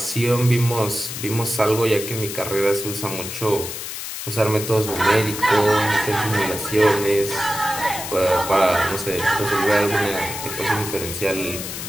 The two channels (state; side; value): noise; left; hiss, 7 dB below the sound